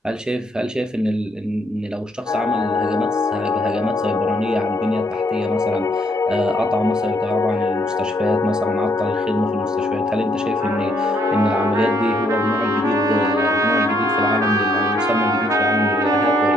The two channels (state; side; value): normal; both; correlation 0.71